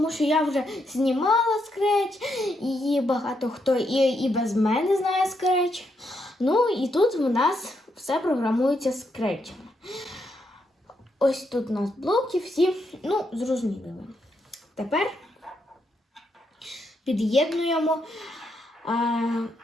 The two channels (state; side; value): normal; both; correlation 0.79